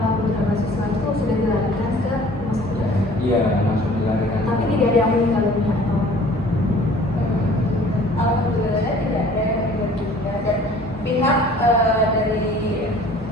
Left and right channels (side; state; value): both; normal; correlation 0.50